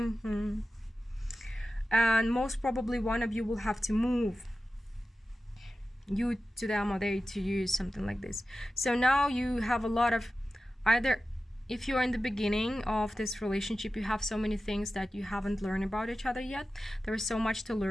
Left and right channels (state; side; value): normal; both; correlation 0.94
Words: And most probably one of you will have to move, you to them or they to you, something like this. So now you have a lot of, either if you're in the beginning of this relationship, you have so many things that you haven't learned about each other yet. There is so much to